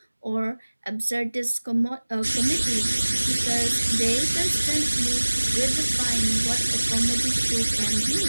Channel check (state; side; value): inverted; both; correlation -1.00